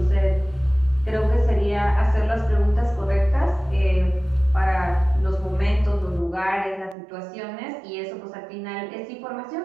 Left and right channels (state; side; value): drops out; left; at 7.0 s